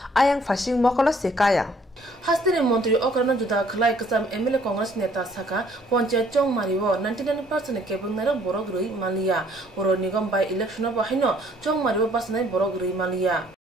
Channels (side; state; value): both; normal; correlation 0.61